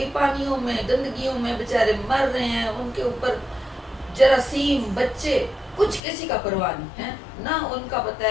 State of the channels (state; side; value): drops out; right; at 6.0 s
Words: پانیوں میں گندگیوں میں بیچارے مر رہے ہیں، ان کے اوپر جراثیم، بچے، کچھ کسی کا پرواہ نہیں ہے، نہ ان کا پتہ